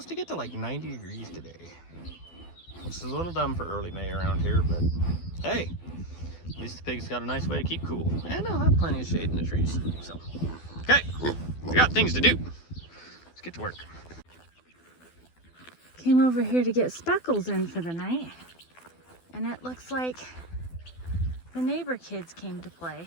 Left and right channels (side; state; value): right; late; 12 ms